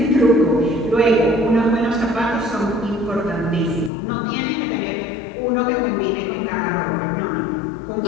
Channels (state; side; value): drops out; right; at 3.9 s